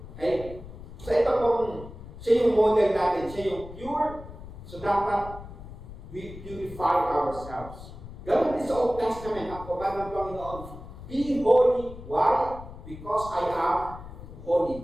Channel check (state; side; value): noise; left; rumble, 14 dB below the sound